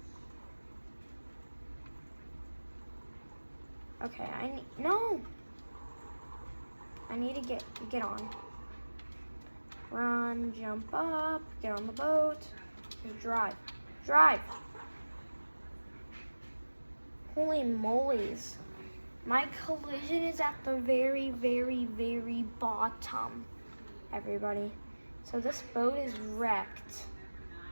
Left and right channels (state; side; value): inverted; both; correlation -1.00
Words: Okay, no! I need to get on. Run, jump up, get on the boat, just drive. Drive! Holy molies. My collision is at the very, very, very bottom, everybody. So this boat is wrecked.